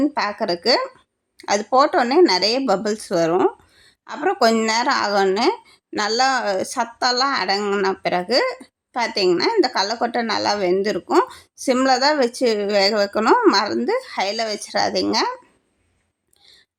பார்க்குறக்கு அது போட்டோடனே நிறைய பபிள்ஸ் வரும். அப்புறம் கொஞ்ச நேரம் ஆகணுன்னு நல்லா சத்தெல்லாம் அடங்கின பிறகு பார்த்திங்கன்னா இந்த கடலக்கொட்டை நல்லா வெந்திருக்கும். சிம்மில் தான் வச்சு வேக வைக்கணும், மறந்து ஹையில் வச்சிடாதீங்க.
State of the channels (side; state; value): both; identical; correlation 1.00